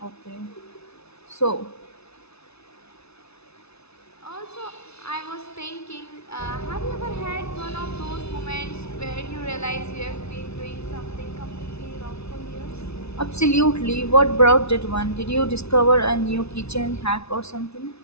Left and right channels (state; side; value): late; right; 0.80 ms